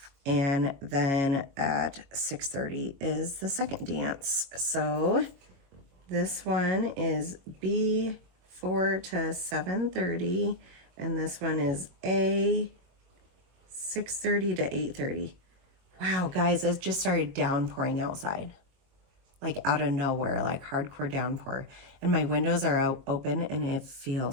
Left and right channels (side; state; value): left; late; 22 ms